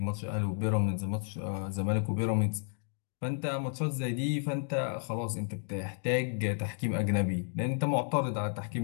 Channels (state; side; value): silent; right; 56 dB below the other